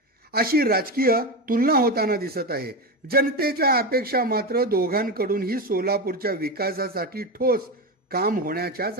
अशी राजकीय तुलना होताना दिसत आहे. जनतेच्या अपेक्षा मात्र दोघांकडूनही सोलापूरच्या विकासासाठी ठोस काम होण्याच्याच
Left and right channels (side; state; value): both; normal; correlation 0.17